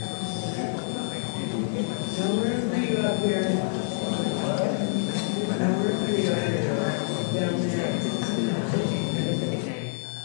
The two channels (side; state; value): right; silent; 60 dB below the other